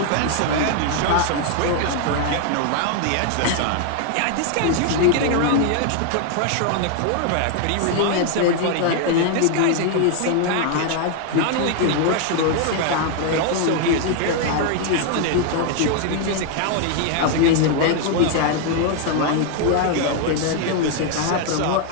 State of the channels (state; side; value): different; both; correlation 0.00